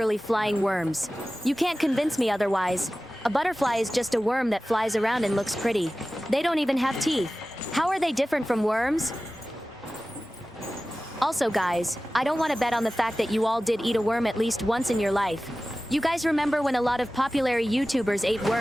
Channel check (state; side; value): normal; both; correlation 0.96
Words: flying worms. You can't convince me otherwise. A butterfly is just a worm that flies around and looks pretty. They don't even have teeth. How are they different from worms? Also, guys, I don't want to bet on the fact that you all did eat a worm at least once in your life. You guys remember when a lot of popular YouTubers ate